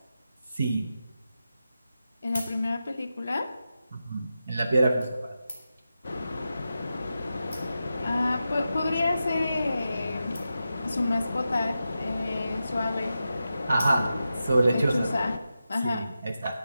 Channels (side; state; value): both; inverted; correlation -0.90